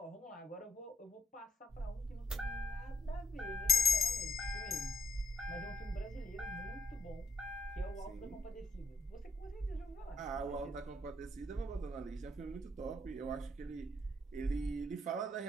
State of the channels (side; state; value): both; normal; correlation 0.73